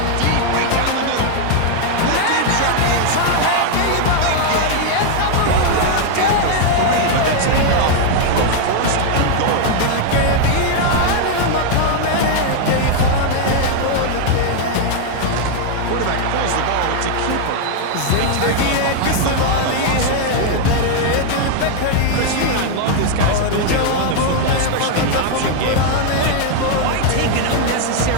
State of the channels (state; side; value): different; both; correlation 0.00